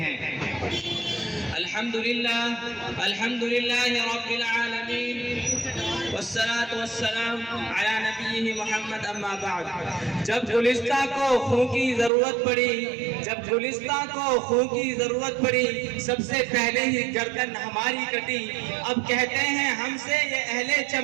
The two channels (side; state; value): left; drops out; at 12.1 s